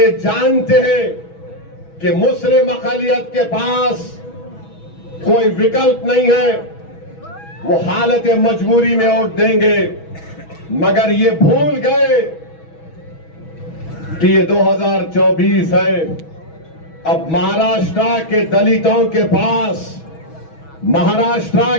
जानते हैं कि मुस्लिम अक़लियत के पास कोई विकल्प नहीं है, वो हालत मजबूरी में वोट देंगे। मगर ये भूल गए कि ये 2024 है। अब महाराष्ट्र के दलितों के पास, महाराष्ट्र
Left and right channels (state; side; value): late; right; 6.2 ms